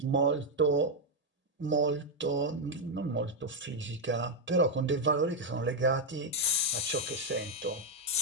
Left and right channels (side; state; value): both; normal; correlation 0.01